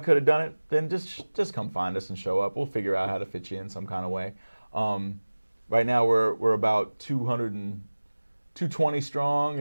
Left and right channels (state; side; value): inverted; both; correlation -1.00